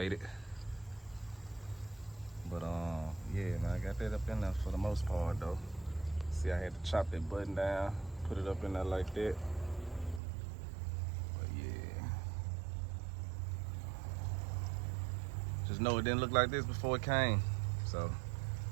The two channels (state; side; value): drops out; left; at 10.2 s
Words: But yeah, man, I got that up in there for the most part though. See, I had to chop that button down, put it up in there like that. But yeah, just know it didn't look like this before it came. So